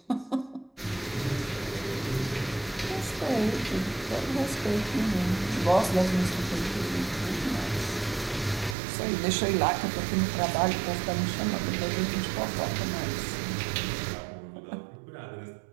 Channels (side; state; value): left; drops out; at 8.8 s